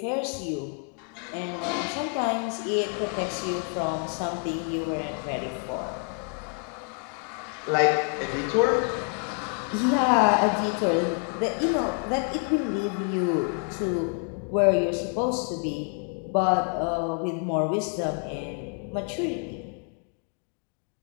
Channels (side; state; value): right; quieter; 38.8 dB